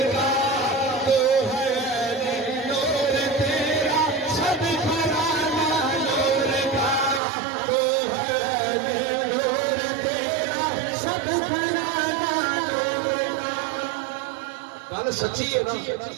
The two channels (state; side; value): drops out; left; at 7.2 s